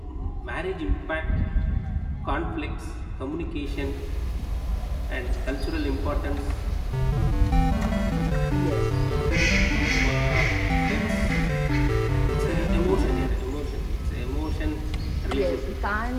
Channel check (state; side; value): identical; both; correlation 1.00